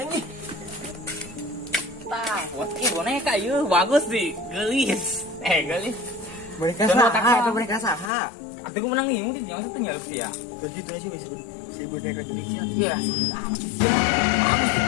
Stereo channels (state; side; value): drops out; right; at 8.1 s